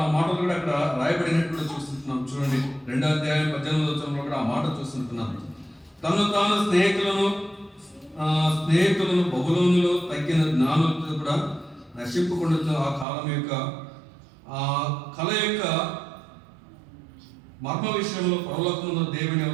ఆ మాటలు కూడా అక్కడ రాయబడినట్లు చూస్తుంటున్నాం. చూడండి, 2వ అధ్యాయం 18వ వచనంలో కూడా ఆ మాట చూస్తుంటున్నాం. తను తాను స్నేహితులను బబులోనులో తగ్గిన జ్ఞానులతో కూడా నశింపుకుంటూ ఆ కాలం యొక్క ఆ కళ యొక్క మర్మ విషయంలో పరలోకమున దేవుని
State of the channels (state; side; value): drops out; left; at 13.1 s